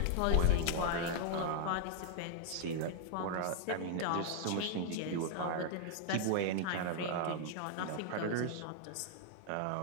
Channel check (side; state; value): both; different; correlation 0.00